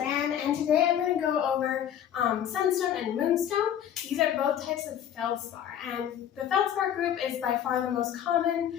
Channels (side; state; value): right; quieter; 9.9 dB